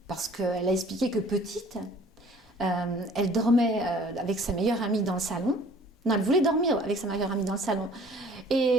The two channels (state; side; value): normal; both; correlation 0.52